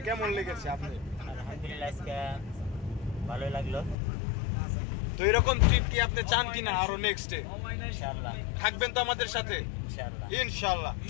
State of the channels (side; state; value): right; drops out; at 4.0 s